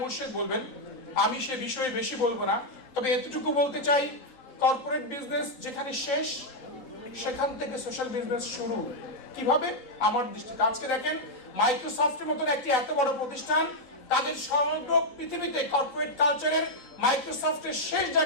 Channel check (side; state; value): right; late; 3.9 ms